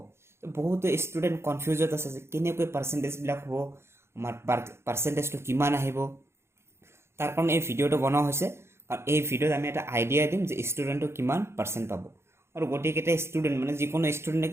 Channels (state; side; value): late; left; 0.12 ms